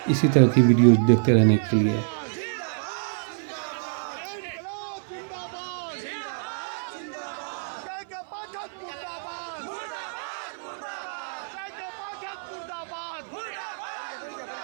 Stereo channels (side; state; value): left; silent; 56 dB below the other